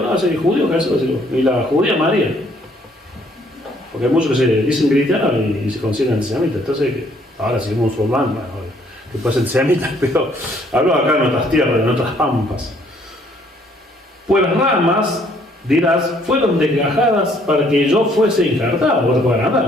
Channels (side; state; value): both; normal; correlation 0.64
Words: hace judío Jesús, y la judía María. Porque hay muchos que se dicen cristianos y se consideran antisemitas. Entonces, ahora si es musulmán, bueno, que puede ser antisemita, pero hablo acá en otras tierras, en otras pampas. Pues las ramas, dirás, fueron desgajadas para que yo fuese injertado. Vos te puedes andar,